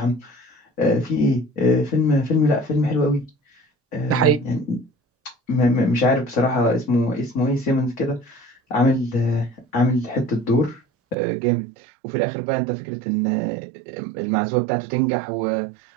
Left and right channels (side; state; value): left; drops out; at 11.2 s